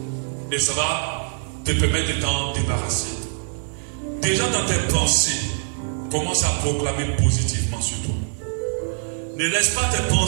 Et ça va te permettre de t'en débarrasser. Déjà dans tes pensées, commence à proclamer positivement sur toi. Ne laisse pas tes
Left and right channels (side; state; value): left; silent; digital silence